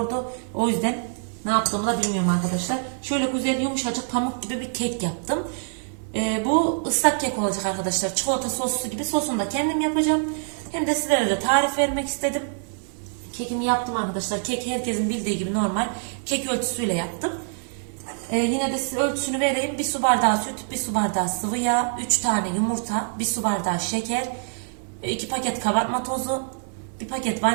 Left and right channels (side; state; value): left; silent; digital silence